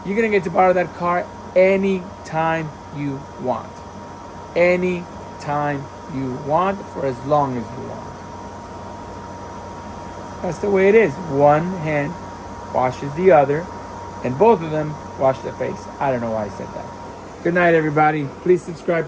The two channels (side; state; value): both; identical; correlation 1.00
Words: you're gonna get to borrow that car anytime you want. Anytime you want, for as long as you want. That's the way it is. One hand washes the other, and both of them wash their face. I don't know why I said that. Good night, everybody. Please